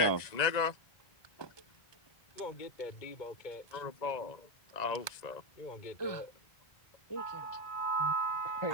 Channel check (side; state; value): right; late; 1.9 ms